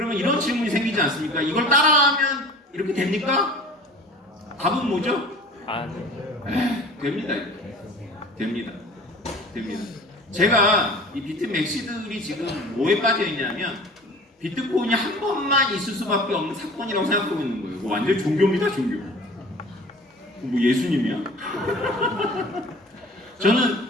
이런 질문이 생기지 않습니까? 이걸 따라하면 이렇게 됩니까? 답은 뭐죠? 됩니다. 됩니다. 제가 이 비트 맥시들이 지금 뭐에 빠져 있냐면 비트코인이 한 번만 있을 수밖에 없는 사건이라고 생각하고 있는 거예요. 완전 종교입니다, 종교. 뭐 예수님이야?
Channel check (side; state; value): both; normal; correlation 0.42